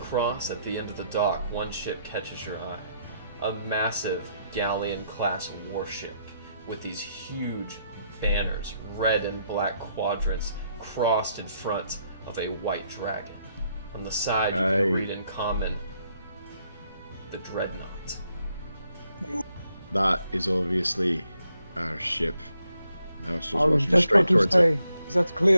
at the end of the dock, one ship catches your eye. A massive galleon-class warship with these huge banners, red and black quadrants, crossed in front of a white dragon. On the side, you can read in common, the Dreadnought. That is obviously our ship. Now it's just I was walking just straight about to towards say, it. that's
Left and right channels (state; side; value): inverted; both; correlation -0.76